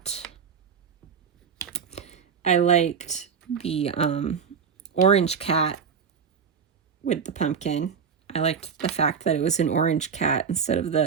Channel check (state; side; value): quieter; left; 6.6 dB